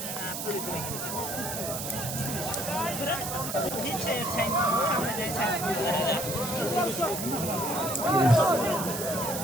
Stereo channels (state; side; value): noise; right; hiss, 5 dB below the sound